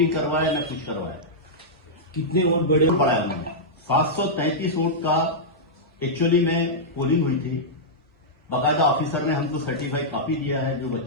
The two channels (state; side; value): normal; both; correlation -0.10